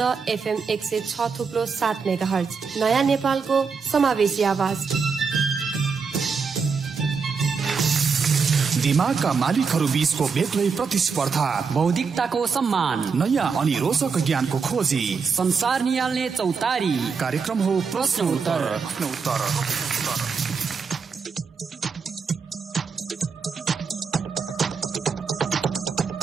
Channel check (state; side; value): quieter; left; 5.4 dB